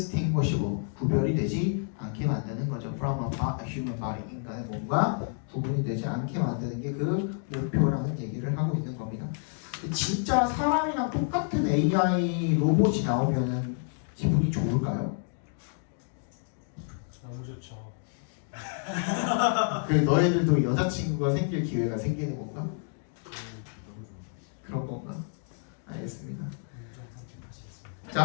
구별이 되지 않게 만드는 거죠. From a human body, 인간의 몸과 구분이 되지 않게 만드는 게 그 목표라는 얘기를 하고 있는 겁니다. 진짜 사람이랑 똑같은 AI 로봇이 나오면은 기분이 좋을까요? 너무 좋죠. 그 너희들도 여자친구가 생길 기회가 생기는 건가? 그런 건가? 알겠습니다.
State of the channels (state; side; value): silent; right; 58 dB below the other